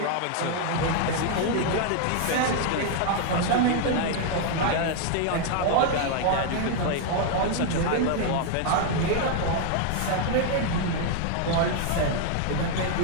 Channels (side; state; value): both; different; correlation 0.00